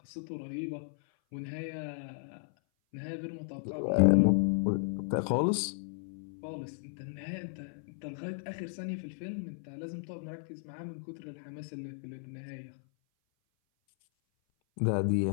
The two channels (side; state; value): right; silent; 55 dB below the other